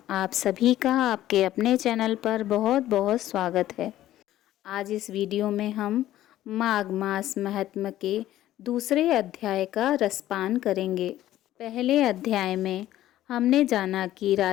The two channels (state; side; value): quieter; right; 13.7 dB